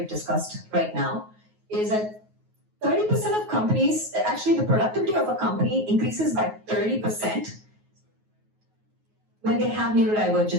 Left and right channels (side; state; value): left; late; 9.4 ms